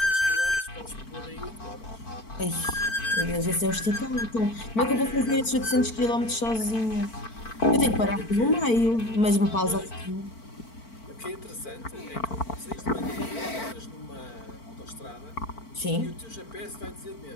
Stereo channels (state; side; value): late; right; 4.5 ms